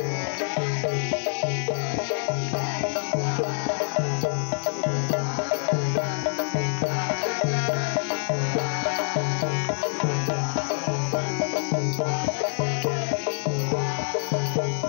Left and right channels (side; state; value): right; silent; digital silence